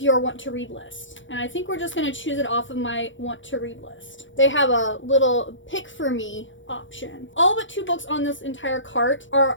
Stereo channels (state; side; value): late; right; 0.56 ms